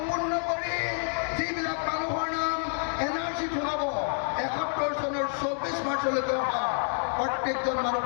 কৰি যিবিলাক মানুহৰ নাম NRC সোমাব 71 চনৰ 24 মাৰ্চলৈকে অহা প্ৰত্যেকজন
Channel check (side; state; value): right; silent; 59 dB below the other